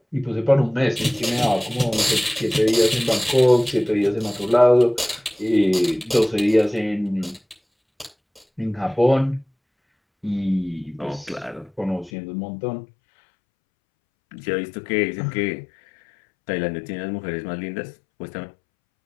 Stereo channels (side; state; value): right; drops out; at 12.1 s